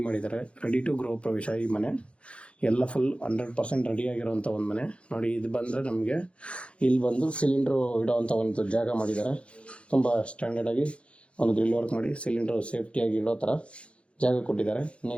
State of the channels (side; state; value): right; late; 0.060 ms